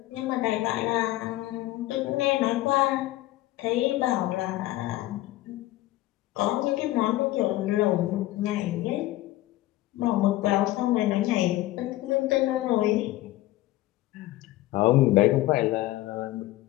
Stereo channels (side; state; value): right; quieter; 16.6 dB